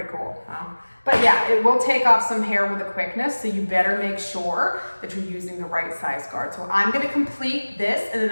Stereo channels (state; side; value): inverted; both; correlation -1.00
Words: cool, huh? But yeah, it will take off some hair with a quickness, so you better make sure that you're using the right size guard. So I'm gonna complete this and then